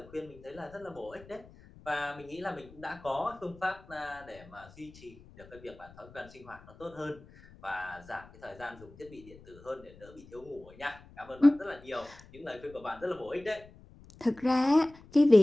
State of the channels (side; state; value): left; noise; rumble, 21 dB below the sound